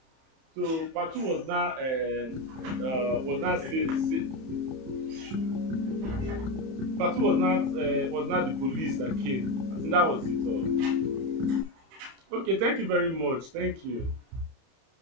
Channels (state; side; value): late; left; 31 ms